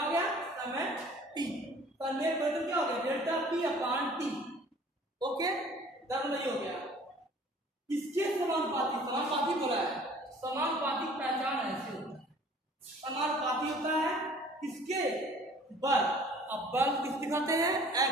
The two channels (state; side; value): normal; both; correlation 0.51